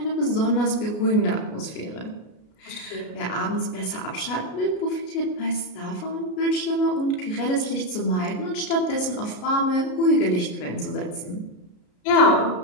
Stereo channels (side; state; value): right; late; 33 ms